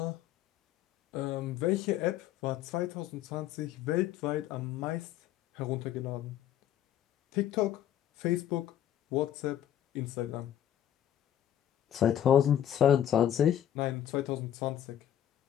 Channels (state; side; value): quieter; right; 10.9 dB